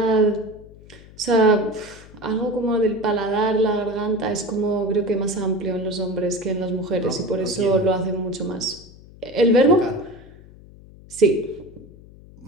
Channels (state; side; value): noise; left; hum, 21 dB below the sound